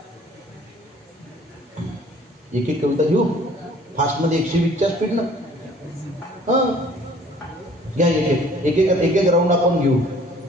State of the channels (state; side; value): normal; both; correlation 0.54